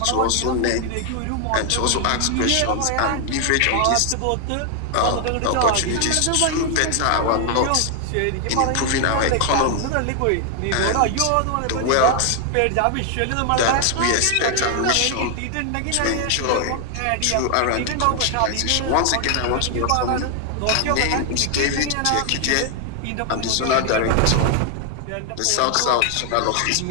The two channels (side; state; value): both; different; correlation 0.00